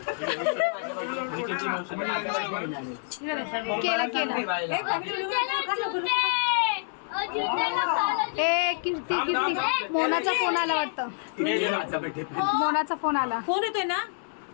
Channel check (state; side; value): silent; right; 60 dB below the other